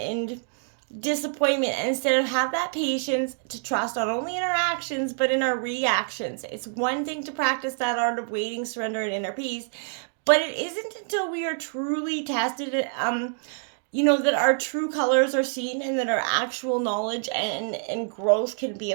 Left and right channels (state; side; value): silent; left; digital silence